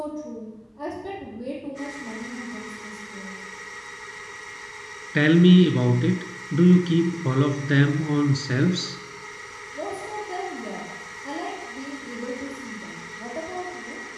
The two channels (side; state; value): both; identical; correlation 1.00